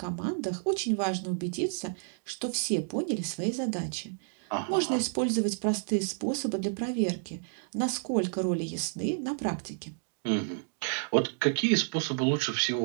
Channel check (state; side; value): silent; left; digital silence